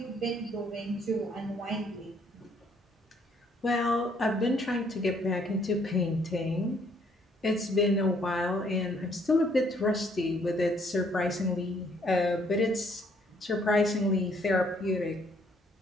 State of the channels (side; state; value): both; normal; correlation 0.66